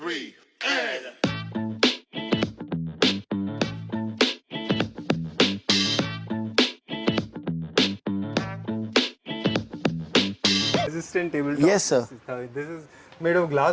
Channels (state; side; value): identical; both; correlation 1.00